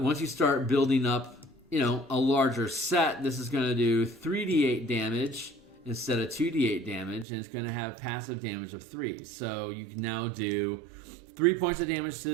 you start building up, a larger set, this is going to do 3d8 damage instead of 2d8 damage, and it's going to have passive damage of 3. So you can now do 3 points of damage to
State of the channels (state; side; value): drops out; left; at 7.2 s